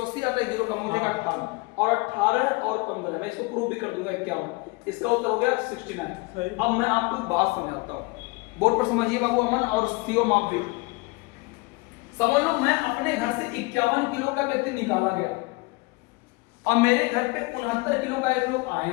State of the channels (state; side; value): quieter; right; 25.6 dB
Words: आता है, 0 कम हो जाएगा 18, और 18 और 15 मैं इसको प्रूव भी कर दूंगा 51। इसका उत्तर हो गया 69। अब मैं आपको एक बात समझाता हूँ, बोर्ड पर समझिए बाबू अमन और सीओ माप भी समझ लो। मैं अपने घर से 51 किलो का व्यक्ति निकाला गया, और मेरे घर पे 69 किलो का एक लोग आए